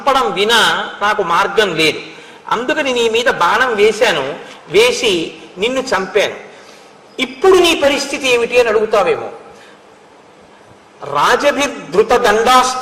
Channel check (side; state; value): both; identical; correlation 1.00